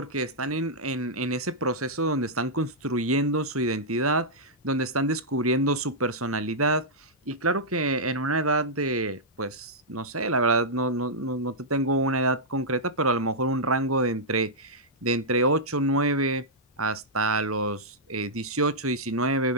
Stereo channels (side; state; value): both; normal; correlation -0.09